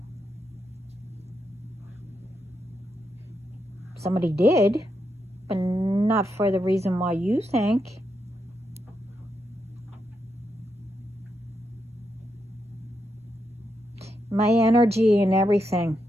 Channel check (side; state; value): both; normal; correlation 0.83